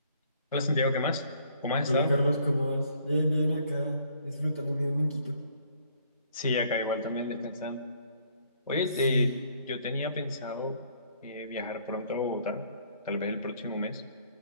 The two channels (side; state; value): both; inverted; correlation -0.63